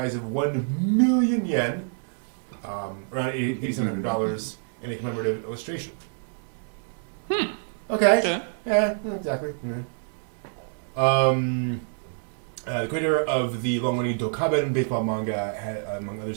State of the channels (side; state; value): left; silent; digital silence